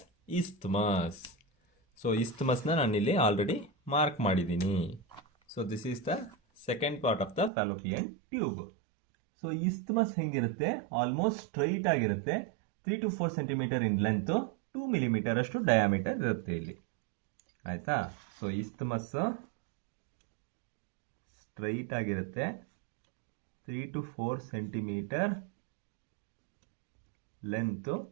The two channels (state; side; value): drops out; left; at 7.5 s